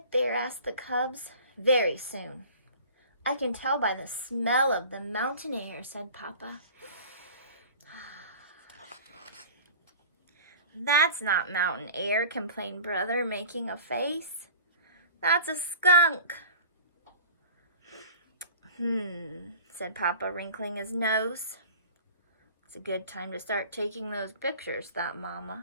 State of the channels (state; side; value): inverted; both; correlation -0.42